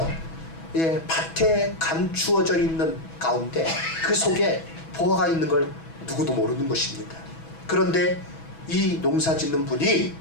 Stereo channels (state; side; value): late; right; 6.1 ms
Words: 밭에 감추어져 있는 가운데 그 속에 보화가 있는 걸 누구도 모르는 것입니다. 그런데 이 농사 짓는 분이